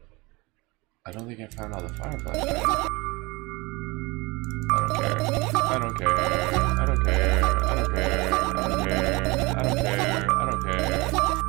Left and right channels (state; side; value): quieter; left; 24.2 dB